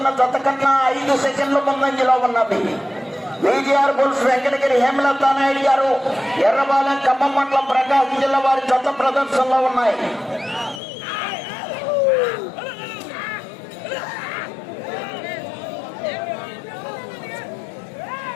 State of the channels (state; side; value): drops out; right; at 10.8 s